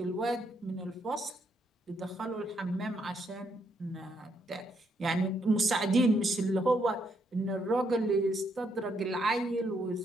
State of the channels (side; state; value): both; normal; correlation 0.75